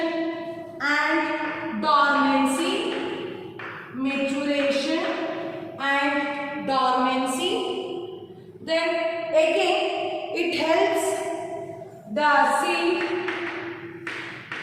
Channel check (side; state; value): both; identical; correlation 1.00